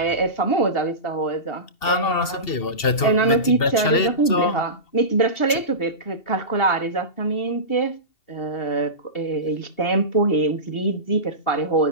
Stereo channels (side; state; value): right; late; 2.7 ms